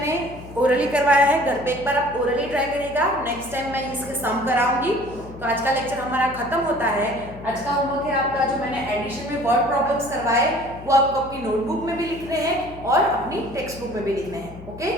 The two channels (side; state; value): left; noise; hum, 16 dB below the sound